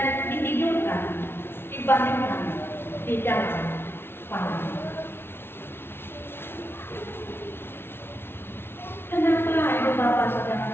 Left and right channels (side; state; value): right; late; 0.11 ms